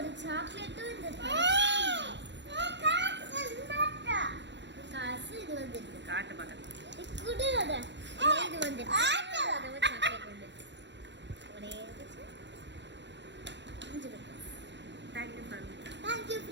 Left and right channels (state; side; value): late; left; 0.52 ms